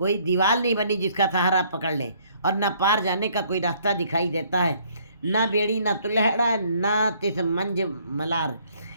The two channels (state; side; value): inverted; both; correlation -0.63